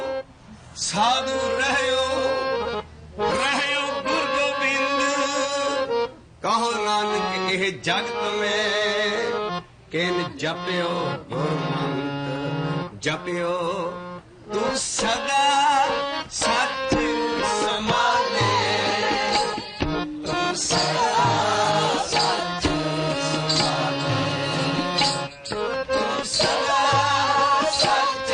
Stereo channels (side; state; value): both; identical; correlation 1.00